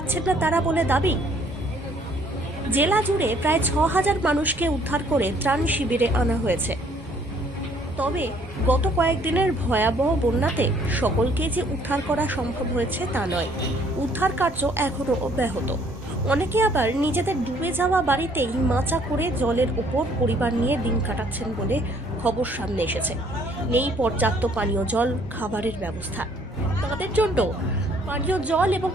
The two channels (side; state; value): both; normal; correlation 0.62